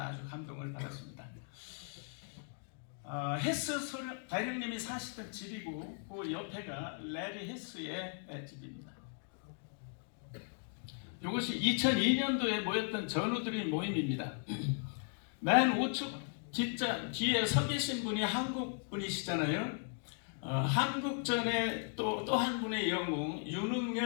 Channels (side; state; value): right; silent; 53 dB below the other